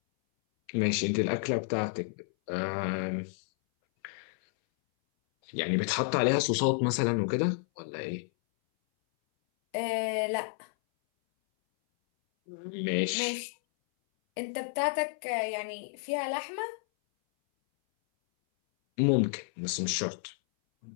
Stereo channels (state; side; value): silent; right; 57 dB below the other